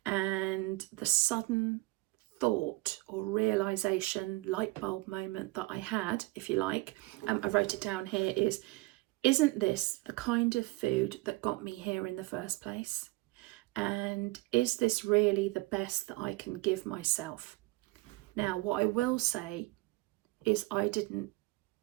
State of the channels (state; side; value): quieter; left; 21.8 dB